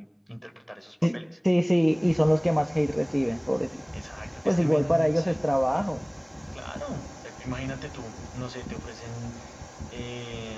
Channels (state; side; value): identical; both; correlation 1.00